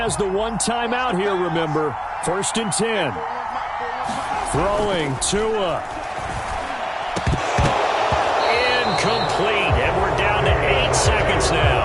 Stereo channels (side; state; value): both; identical; correlation 1.00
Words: the one timeout here, remember. 1st and 10. Throwing Tua. Incomplete. And we're down to 8 seconds